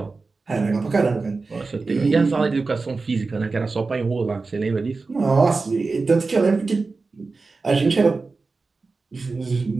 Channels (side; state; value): left; quieter; 4.0 dB